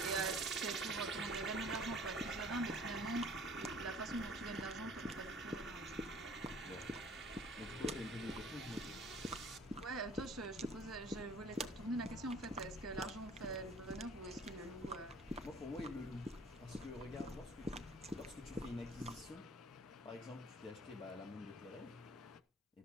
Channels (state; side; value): normal; both; correlation 0.51